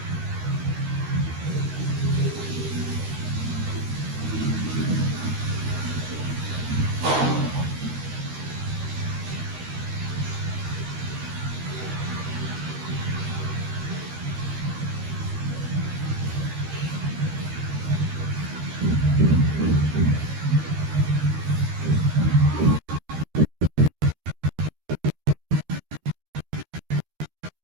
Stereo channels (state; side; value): late; left; 13 ms